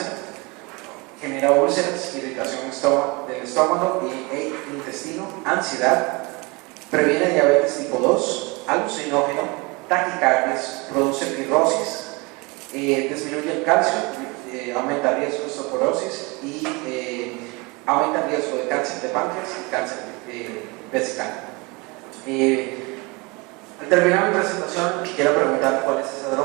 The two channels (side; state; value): left; quieter; 26.9 dB